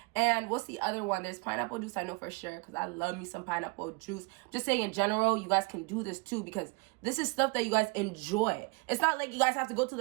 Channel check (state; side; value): quieter; left; 27.3 dB